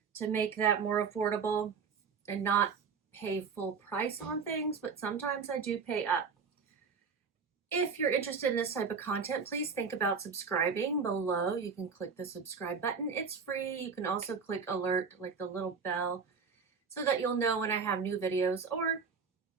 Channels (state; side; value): quieter; left; 5.6 dB